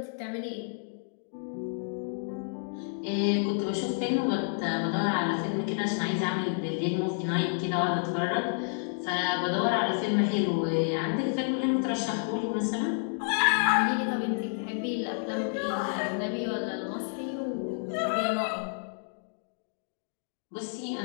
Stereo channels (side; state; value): right; silent; digital silence